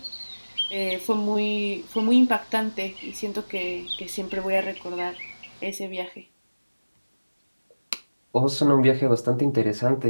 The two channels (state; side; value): inverted; both; correlation -1.00